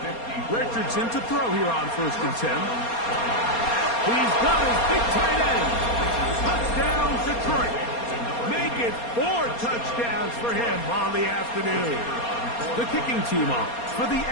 Richardson to throw here on 1st and 10. He's got his big tight end. Touchdown, Detroit. Make it 4 touchdowns for him on the afternoon. The kicking team on for the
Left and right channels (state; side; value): late; right; 4.3 ms